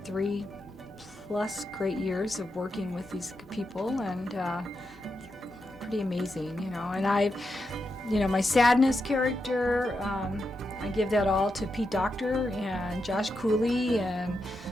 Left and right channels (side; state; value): both; normal; correlation 0.86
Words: 3+ great years of working with these people, and pretty amazing, you know. And my sadness character, I give that all to Pete Docter and Josh Cooley and